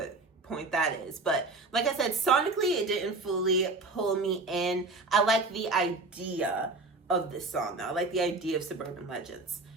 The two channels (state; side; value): quieter; left; 3.4 dB